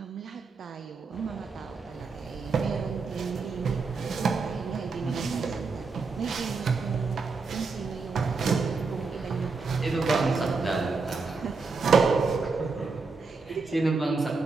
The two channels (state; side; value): quieter; left; 4.4 dB